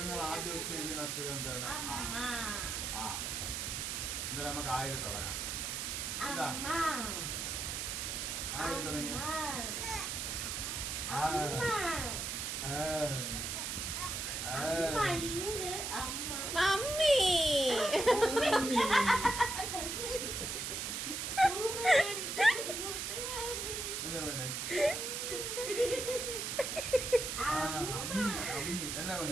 ആദ്യം ഉച്ചരിക്കുന്ന അക്ഷരം എന്താണ്? ആ, എന്തായാലും നമുക്ക് ആയിരം തുടങ്ങാം. എന്താ ആയിരം തുടങ്ങി? മമ്മി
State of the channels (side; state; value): right; noise; hiss, 3 dB below the sound